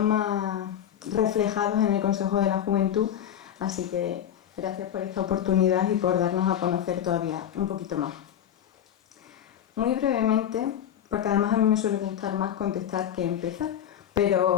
más reflejados en el Consejo de la Juventud. Así que gracias por esta oportunidad y por darnos a conocer todavía un poquito más. Muy brevemente, porque además a mí me suele gustar más contestar que empezar,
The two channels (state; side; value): quieter; right; 10.0 dB